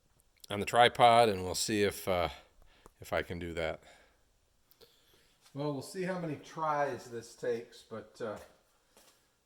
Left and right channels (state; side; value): identical; both; correlation 1.00